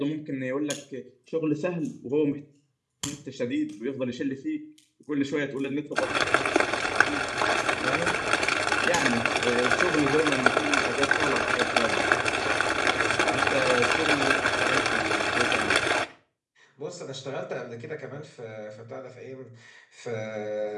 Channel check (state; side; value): identical; both; correlation 1.00